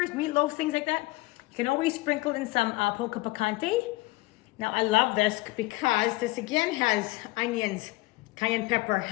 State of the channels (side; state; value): right; quieter; 21.3 dB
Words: meatloaf, things like that, you can always sprinkle in some polka picante. Now I love this because this again has onions, cayenne pepper,